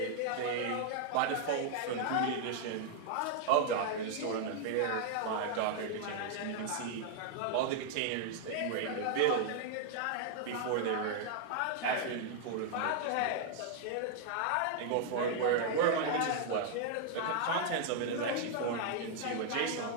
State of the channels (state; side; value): different; both; correlation 0.00